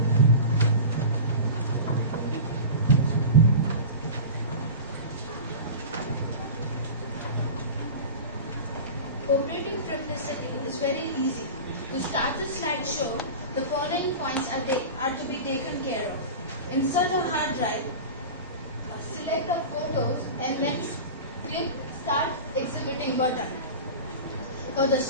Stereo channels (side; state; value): both; inverted; correlation -0.30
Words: Operating Triplicity is very easy. To start the slideshow, the following points are to be taken care of. Insert a hard drive, select the photos, and then click Start Exhibiting button. For the